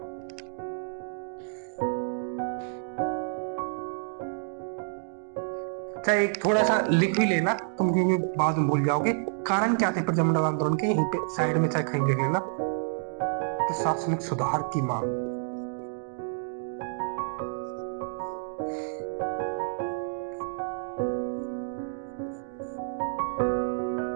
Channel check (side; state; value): left; silent; digital silence